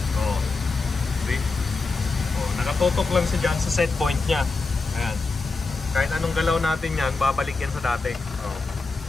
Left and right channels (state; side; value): quieter; right; 4.0 dB